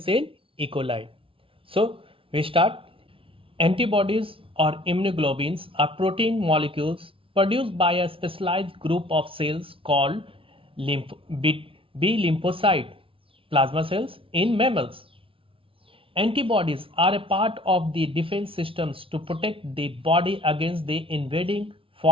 in E. coli. So, we start. Antibodies or immunoglobulins are protein molecules produced by a specialized group of cells called B lymphocyte plasma cells in mammals. Antibodies are a part of the defense systems to protect the body against the invading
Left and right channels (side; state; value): left; late; 0.26 ms